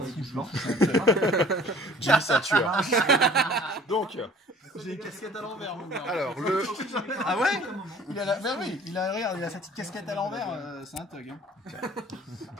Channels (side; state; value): both; normal; correlation 0.50